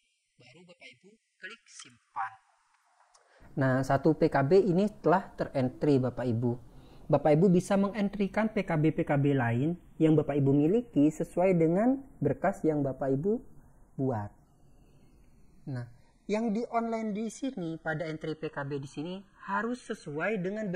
Baru Bapak Ibu klik simpan. Nah, satu PKB ini telah terentry Bapak Ibu. Bapak Ibu bisa mengentrikan PKB-PKB lain yang Bapak Ibu miliki sesuai dengan berkas yang Bapak Ibu buat. Nah, yang di online di sini pada entry PKB di sini harus sesuai dengan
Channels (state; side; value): identical; both; correlation 1.00